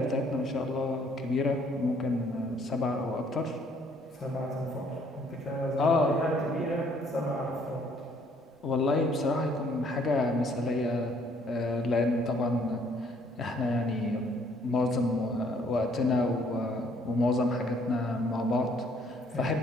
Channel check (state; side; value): normal; both; correlation 0.63